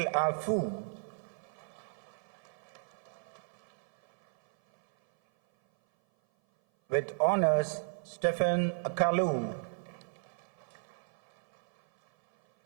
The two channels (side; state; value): left; silent; 55 dB below the other